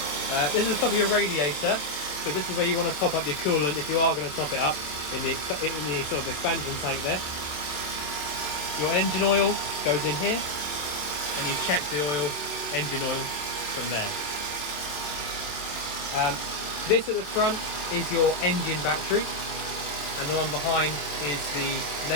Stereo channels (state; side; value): late; right; 27 ms